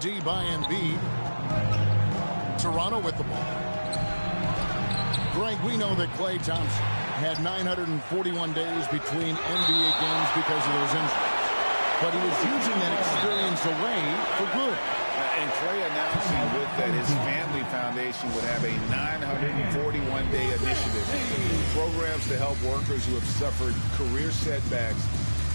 by Embiid. Toronto with the ball. Greg, we know that Klay Thompson had 941 days between NBA games because of those injuries. But he was using that experience away for good. And Klay announcing with that his family foundation would have a 941-day initiative. Programs to help workers who have suffered career setbacks.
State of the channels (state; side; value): inverted; both; correlation -1.00